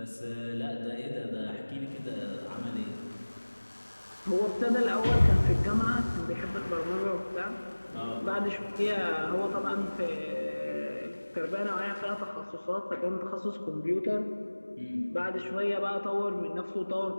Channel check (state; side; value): inverted; both; correlation -1.00